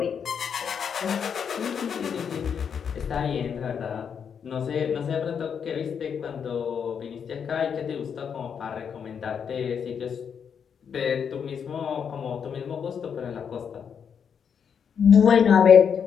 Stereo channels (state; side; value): quieter; right; 7.2 dB